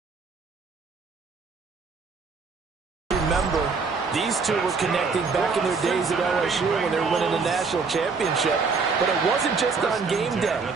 Remember, these two were connecting back in their days at LSU when they were winning the national championship. But it wasn't just on game day.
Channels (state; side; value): quieter; left; 4.8 dB